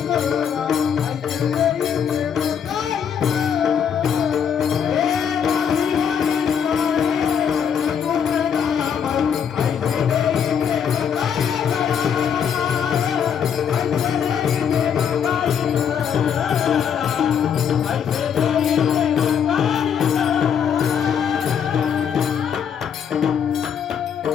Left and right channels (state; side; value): quieter; right; 7.9 dB